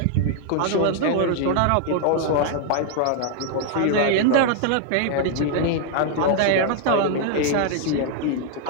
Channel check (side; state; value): both; different; correlation 0.00